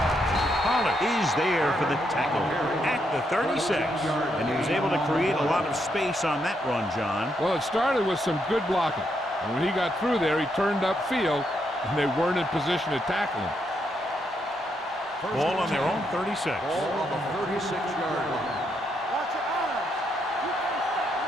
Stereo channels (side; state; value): both; normal; correlation 0.78